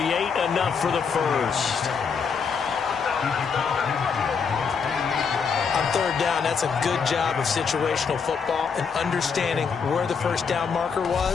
enough for the first. On 3rd down, that's a good job of situational football and understanding where the first down marker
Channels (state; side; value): quieter; right; 6.0 dB